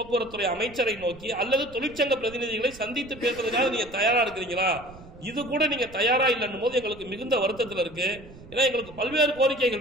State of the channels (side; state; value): right; noise; rumble, 19 dB below the sound